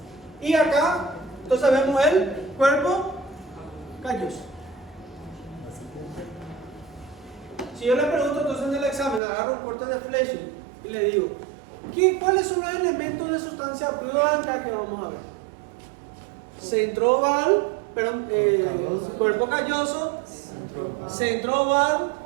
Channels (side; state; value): left; drops out; at 9.2 s